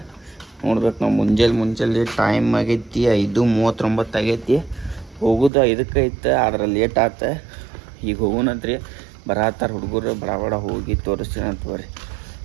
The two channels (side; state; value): left; drops out; at 5.5 s